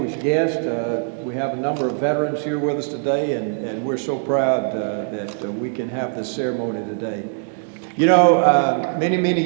guests. We have a number of veterans here with us today, and we're so proud that we can have this ceremony today. You know, many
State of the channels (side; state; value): left; silent; digital silence